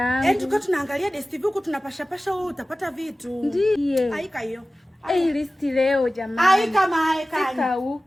Tukiwa tunaangalia DSTV huko tunapasha wewe utapata vitu. Ndiye. Haika hiyo. List leo jamani. Haika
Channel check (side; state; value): both; normal; correlation 0.96